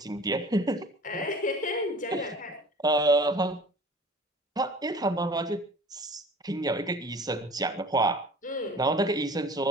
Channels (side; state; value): both; normal; correlation 0.44